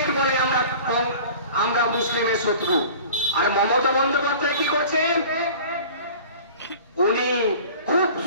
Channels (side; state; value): both; inverted; correlation -0.43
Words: বলে আমরা মুসলিমের শত্রু। আর মমতা বন্দ্যোপাধ্যায় কি করছেন? উনি খুব